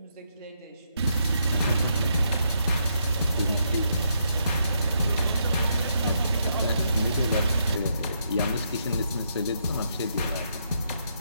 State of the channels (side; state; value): both; inverted; correlation -0.77